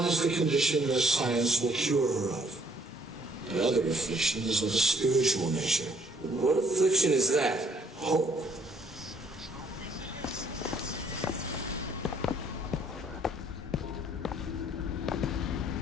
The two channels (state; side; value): normal; both; correlation 0.65